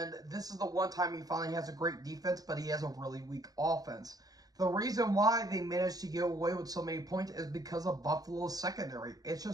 this is the one time he finally has a great defense, but he has a really weak offense. The reason why they managed to get away with so many points is because of Buffalo's secondary. It's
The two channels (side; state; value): left; late; 0.18 ms